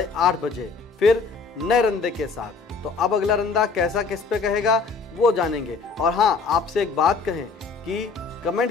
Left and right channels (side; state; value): right; quieter; 4.6 dB